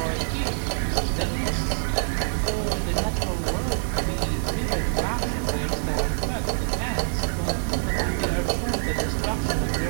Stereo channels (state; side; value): silent; left; digital silence